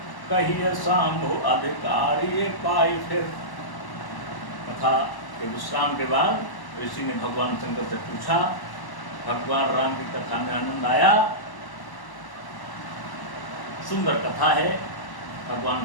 कहिए शंभु अधिकारी पाई। फिर कथा के विश्राम के बाद ऋषि ने भगवान शंकर से पूछा, भगवान राम की कथा में आनंद आया, सुंदर कथा है। भगवान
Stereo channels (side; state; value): right; late; 1.0 ms